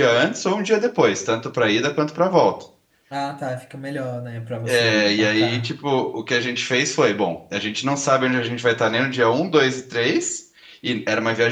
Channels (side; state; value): both; identical; correlation 1.00